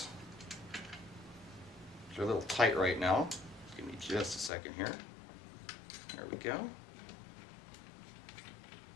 They're a little tight right now. Give me just a second here. There we go.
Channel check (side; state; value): right; drops out; at 4.5 s